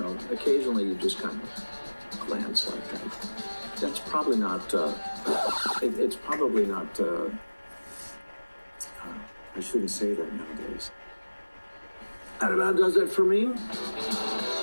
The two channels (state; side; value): inverted; both; correlation -1.00